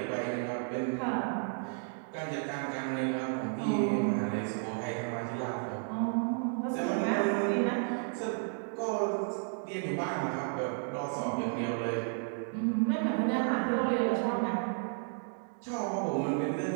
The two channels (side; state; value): left; silent; 56 dB below the other